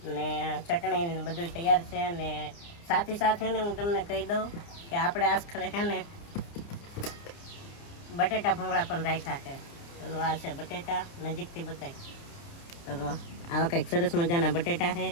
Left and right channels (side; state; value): right; late; 29 ms